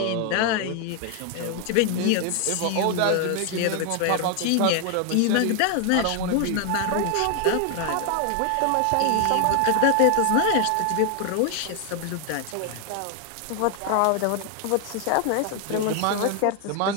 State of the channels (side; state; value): both; different; correlation 0.00